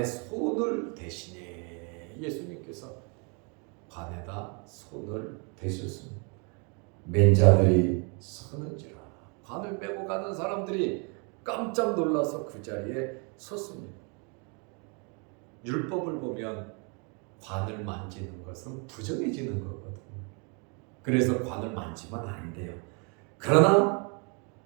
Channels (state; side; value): quieter; left; 35.3 dB